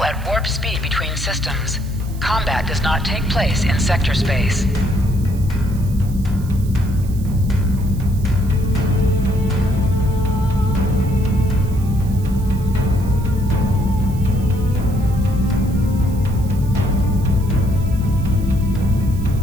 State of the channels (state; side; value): noise; right; hiss, 21 dB below the sound